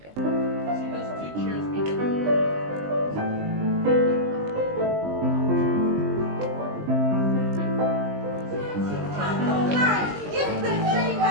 you. See those two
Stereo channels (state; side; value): late; left; 20 ms